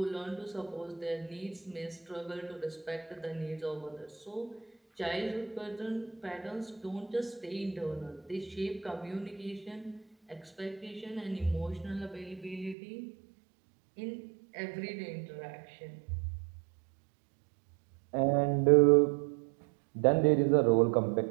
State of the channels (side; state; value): left; drops out; at 12.8 s